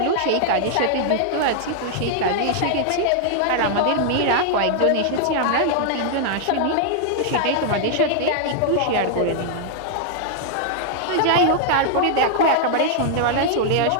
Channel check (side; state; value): both; different; correlation -0.01